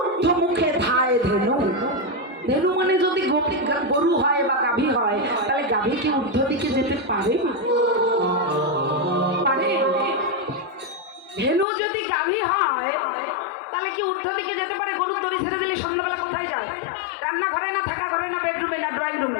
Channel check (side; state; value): right; drops out; at 11.7 s